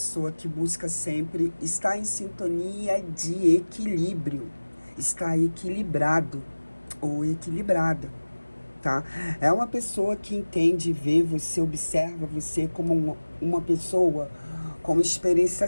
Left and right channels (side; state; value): both; inverted; correlation -1.00